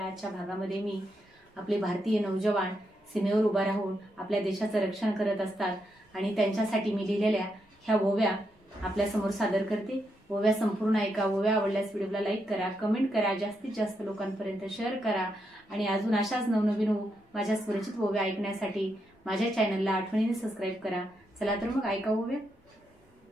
भागामध्ये मी आपले भारतीय नौजवान सीमेवर उभा राहून आपल्या देशाचं रक्षण करत असतात आणि त्यांच्यासाठी मी लिहिलेल्या ह्या ओव्या आपल्या समोर सादर करते। ओव्या संपूर्ण ऐका। ओव्या आवडल्यास व्हिडिओला लाईक करा, कमेंट करा, जास्तीत जास्त लोकांपर्यंत शेअर करा आणि अजून अशाच नवनवीन माझ्या स्वरचित ओव्या ऐकण्यासाठी माझ्या चॅनलला आठवणीने सबस्क्राइब करा। चला तर मग ऐका ओव्या।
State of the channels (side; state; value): both; normal; correlation 0.81